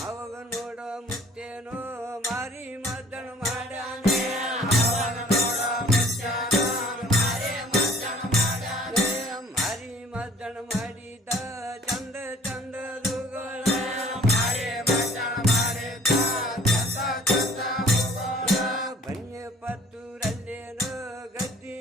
ಅವಾಗ ನೋಡ ಮುತ್ತೇನೋ ಮಾರಿ ಮದ್ದಣ ಮಾಡ್ಯಾನೆ ಮಾರಿ ಮದ್ದಣ ಮಾಡಿದ ಚಂದ ಚಂದದುಗಳ ಬನ್ನಿ ಪತ್ತೂರಲ್ಲೇನೋ ಗದ್ದಿ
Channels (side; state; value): both; normal; correlation 0.52